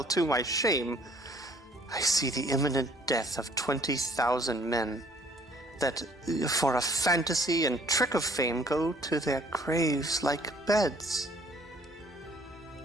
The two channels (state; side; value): normal; both; correlation 0.58